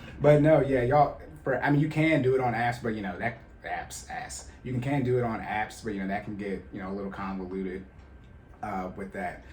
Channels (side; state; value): both; identical; correlation 1.00